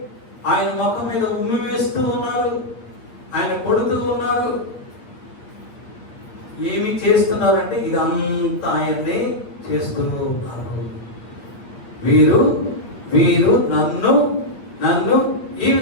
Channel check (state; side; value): late; right; 8.8 ms